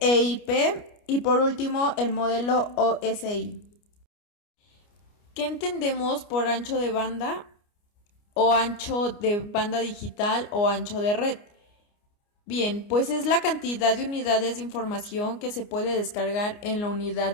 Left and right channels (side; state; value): right; late; 29 ms